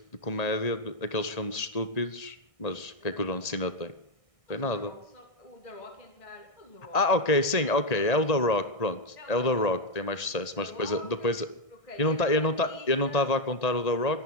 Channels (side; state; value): right; late; 1.6 ms